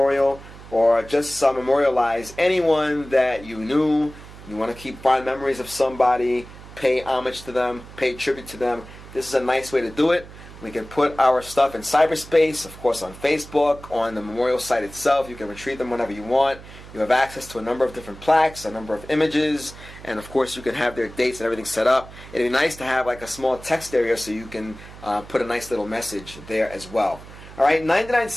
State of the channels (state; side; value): noise; right; hum, 17 dB below the sound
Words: or just memorialize anyone that you knew. You want to keep fond memories of somebody, pay homage to them, pay tribute to them. This is a nice way to do it. We can put our stuff in cyberspace, of course on Facebook, on the memorial site itself. You can retrieve them whenever you want. You have access to a number of different plaques, a number of images, and of course you can have their dates and everything set up. It'd be nice to have like a small text area so you can put a nice little message there as well. Alright, 99